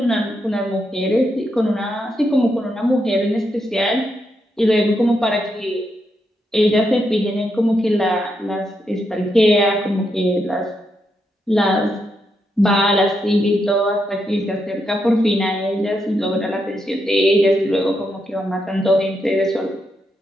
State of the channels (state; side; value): normal; both; correlation 0.82